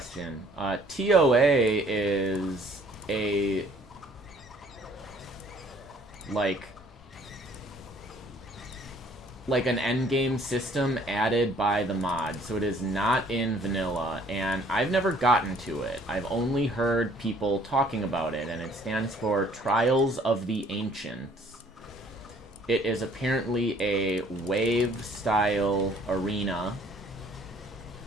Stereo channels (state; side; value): normal; both; correlation 0.58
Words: TOA is a, like an endgame system added by the mod. So it is not in vanilla, and I've never gotten to it. I've only heard people talking about it, and it stands for Trials of the Ancients. It is apparently a wave-style arena.